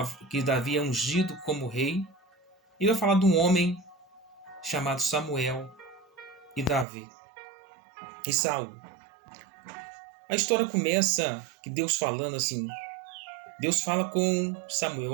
que Davi é ungido como rei, e vai falar de um homem chamado Samuel e Davi e Saul. A história começa que Deus falando assim. Deus fala com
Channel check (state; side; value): drops out; left; at 6.9 s